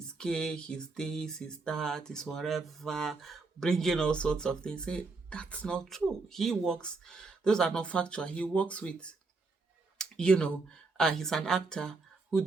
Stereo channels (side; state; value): left; quieter; 3.8 dB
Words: gay, he's this, he's that, he's whatever, bringing all sorts of things. Say that's not true. He works; those are not factual. He works with, you know, he's an actor who